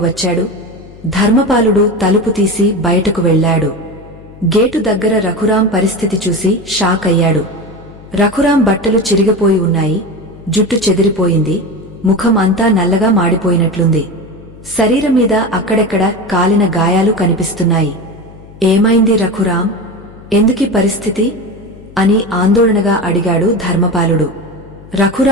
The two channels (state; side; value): noise; left; hum, 20 dB below the sound